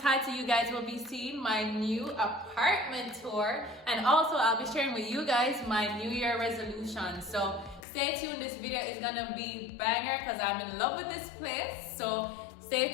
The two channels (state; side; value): drops out; right; at 7.8 s